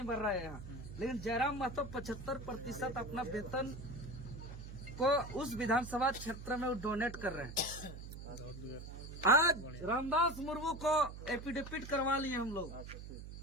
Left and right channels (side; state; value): right; noise; hum, 11 dB below the sound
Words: भर रहा है यहाँ, लेकिन जयराम महतो 75% अपना वेतन को उस विधानसभा क्षेत्र में डोनेट कर रहे हैं। आज रामदास मुर्मू को एफिडेविट करवा लिए हम लोग